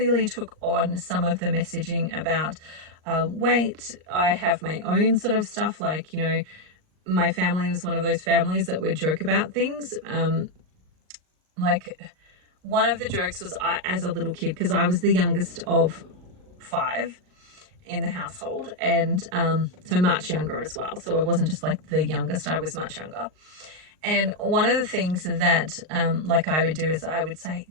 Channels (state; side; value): late; left; 38 ms